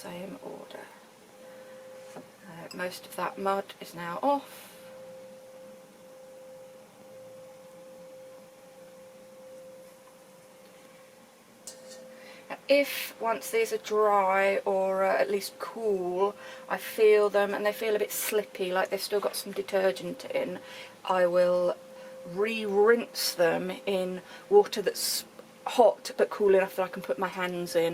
order. Most of that mud is now off. If once these are dry or at least cool, I feel them and they feel a bit slippy, like they've still got some detergent in, I will re-rinse them in water that's hot but cool enough that I can put my hands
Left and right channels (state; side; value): identical; both; correlation 1.00